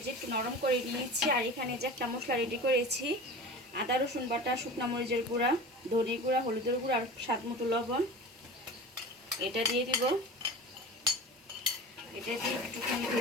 একটু নরম করে নিয়েছি। আর এখানে যে একটা মশলা রেডি করেছি, আদা রসুন বাটা, শুকনো মরিচের গুঁড়া, ধনে গুঁড়া, হলুদের গুঁড়া আর স্বাদ মতো লবণ, এটা দিয়ে দিব। এটা দিয়ে একটুখানি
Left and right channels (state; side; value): normal; both; correlation 0.34